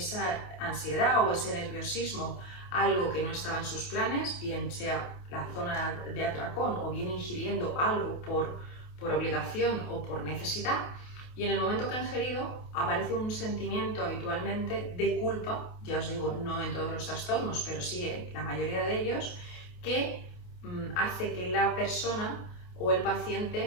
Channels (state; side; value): late; right; 28 ms